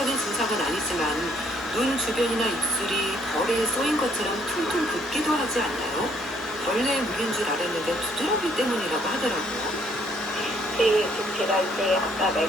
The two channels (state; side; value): normal; both; correlation 0.66